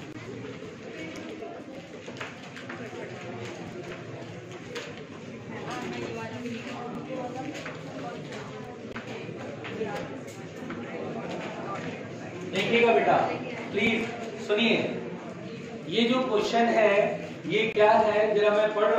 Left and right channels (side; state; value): both; identical; correlation 1.00